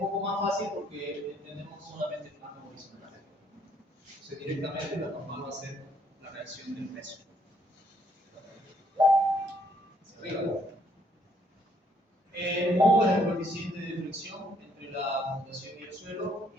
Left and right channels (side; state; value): both; normal; correlation 0.68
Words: más fácil porque entendemos solamente el plano horizontal. Entonces, directamente la normal va a ser la reacción del peso. Hacia arriba. Mu es el coeficiente de fricción entre la fundación y el suelo,